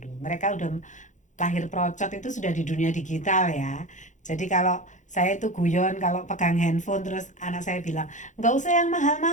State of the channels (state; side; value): late; right; 0.36 ms